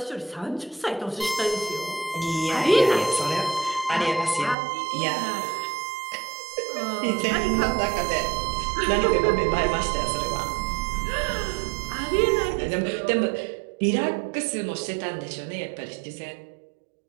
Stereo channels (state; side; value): drops out; left; at 4.5 s